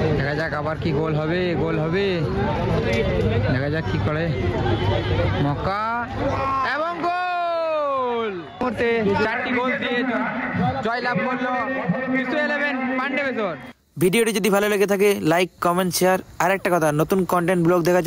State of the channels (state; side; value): identical; both; correlation 1.00